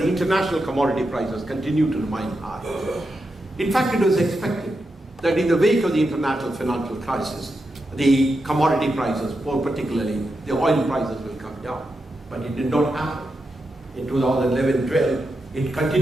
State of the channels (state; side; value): normal; both; correlation 0.87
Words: international commodity prices continue to remain high. In fact, it was expected that in the wake of the international financial crisis, the commodity prices, more particularly the oil prices, will come down. But it did not happen. In 2011-12, it